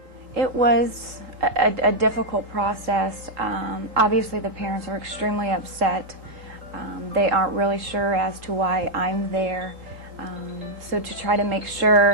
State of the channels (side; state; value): left; late; 3.7 ms